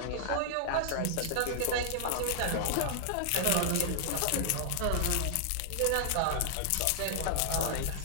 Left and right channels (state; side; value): different; both; correlation -0.01